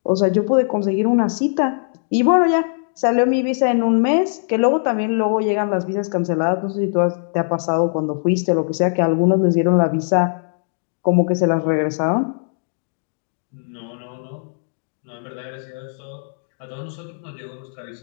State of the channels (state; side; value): silent; right; digital silence